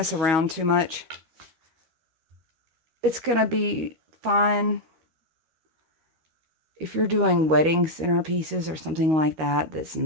around too much, it's going to be fine. If you're doing wedding centerpieces or something like that, that's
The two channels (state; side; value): late; left; 13 ms